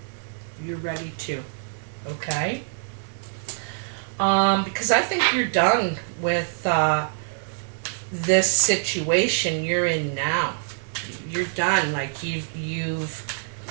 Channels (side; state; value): left; silent; digital silence